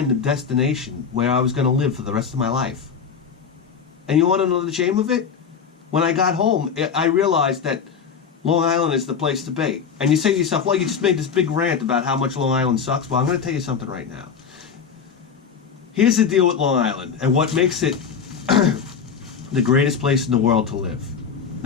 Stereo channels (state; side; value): quieter; right; 6.5 dB